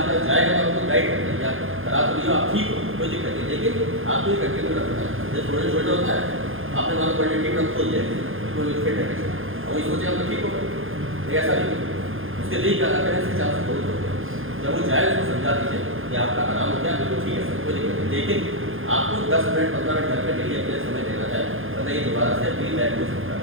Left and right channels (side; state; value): left; late; 0.59 ms